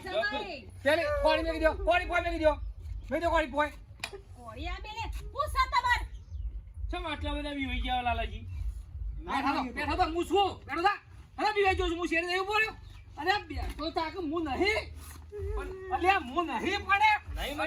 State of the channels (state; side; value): identical; both; correlation 1.00